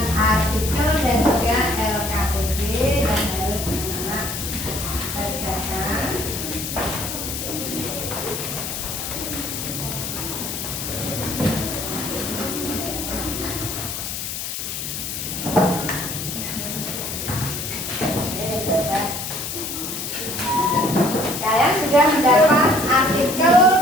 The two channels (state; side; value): noise; left; hiss, 5 dB below the sound